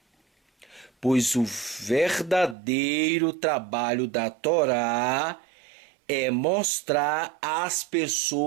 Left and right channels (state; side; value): drops out; left; at 2.6 s